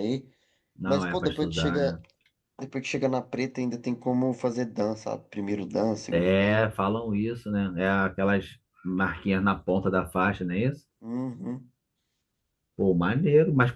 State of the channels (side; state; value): both; identical; correlation 1.00